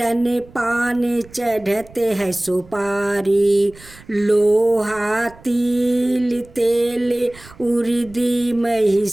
पान चढ़ते है सुपारी, लोहा तिल तेल उर्दी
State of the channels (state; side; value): noise; right; rumble, 22 dB below the sound